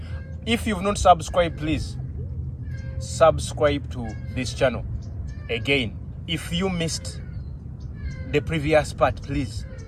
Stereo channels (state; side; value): identical; both; correlation 1.00